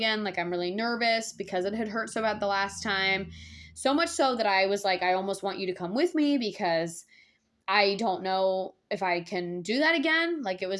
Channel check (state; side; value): identical; both; correlation 1.00